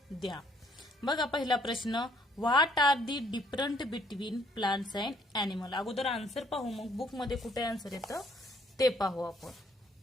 द्या. बघा पहिला प्रश्न, what are the different between plants and animal. अगोदर आन्सर पाहू, मग बुक मध्ये कुठे आन्सर येतं ते पाहू आपण.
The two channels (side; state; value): both; normal; correlation 0.65